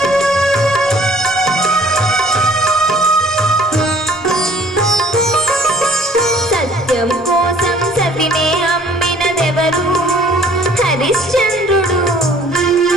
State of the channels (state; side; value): normal; both; correlation 0.55